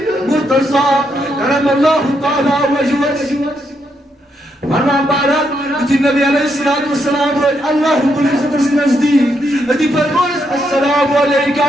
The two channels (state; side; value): normal; both; correlation 0.78